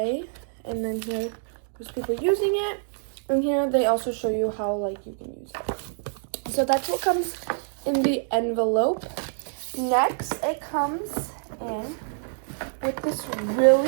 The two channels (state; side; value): silent; left; digital silence